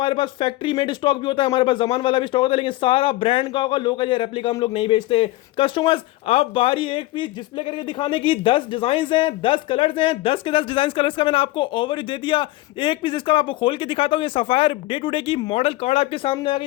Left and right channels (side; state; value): right; quieter; 18.1 dB